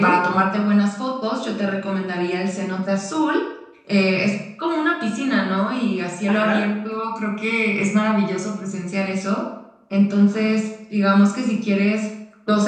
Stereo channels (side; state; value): both; identical; correlation 1.00